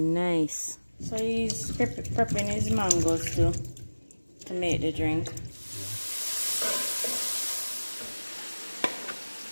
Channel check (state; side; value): inverted; both; correlation -1.00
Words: nice. So he's prepping his mangoes to make the drink.